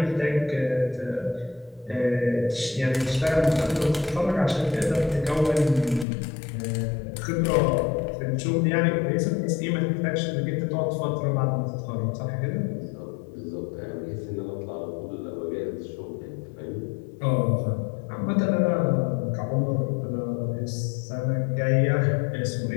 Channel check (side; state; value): right; drops out; at 6.1 s